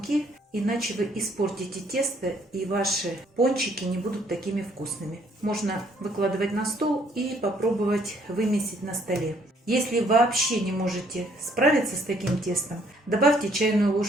иначе вы испортите тесто и ваши пончики не будут такими вкусными. Можно выкладывать на стол и попробовать вымесить на столе. Если вообще не можете справиться с таким тестом, добавьте чайную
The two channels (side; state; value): both; normal; correlation 0.64